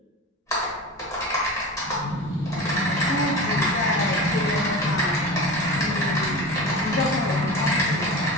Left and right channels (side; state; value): both; normal; correlation 0.30